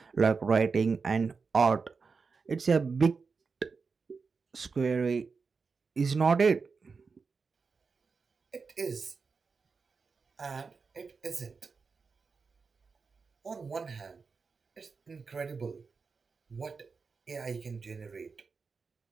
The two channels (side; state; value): left; quieter; 4.9 dB